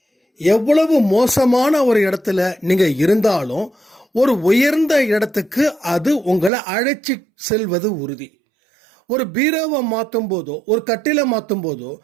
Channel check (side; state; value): left; drops out; at 6.5 s